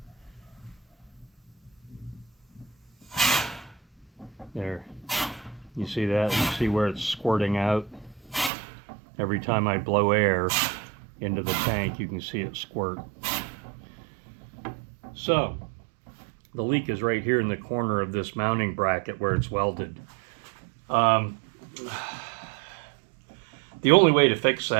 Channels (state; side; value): drops out; left; at 8.5 s